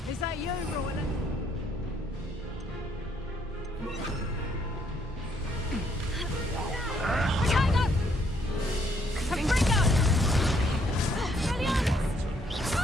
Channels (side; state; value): both; normal; correlation 0.70